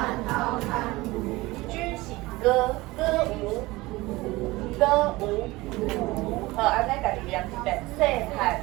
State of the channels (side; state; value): left; quieter; 20.6 dB